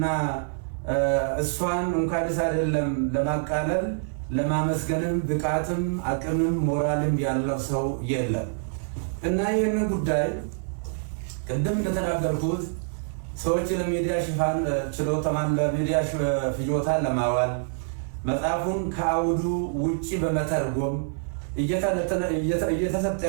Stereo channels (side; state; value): left; silent; 61 dB below the other